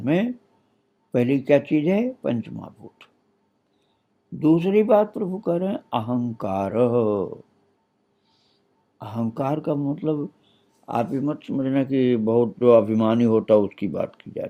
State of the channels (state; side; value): identical; both; correlation 1.00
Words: में पहली क्या चीज है? पंच महाभूत। दूसरी बात प्रभु कह रहे हैं अहंकार। अहंकार का मतलब आप ये मत समझना कि बहुत जो अभिमानी होता है उसकी बात की जा